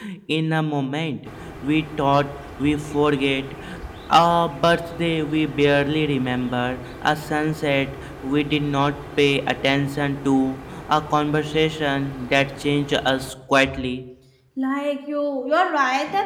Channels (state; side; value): identical; both; correlation 1.00